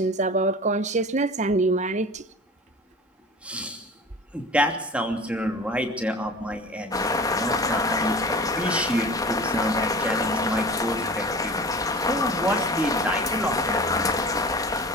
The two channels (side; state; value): both; normal; correlation 0.38